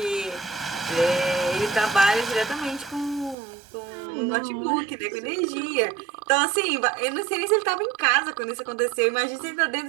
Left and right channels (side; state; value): left; drops out; at 3.4 s